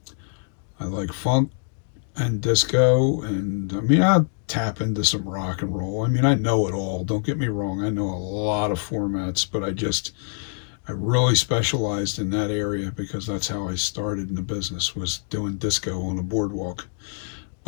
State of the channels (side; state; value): right; silent; digital silence